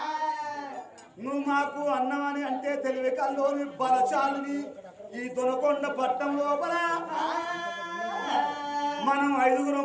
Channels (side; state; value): both; identical; correlation 1.00